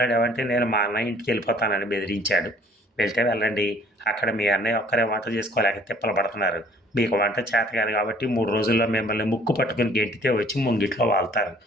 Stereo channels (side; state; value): both; normal; correlation 0.56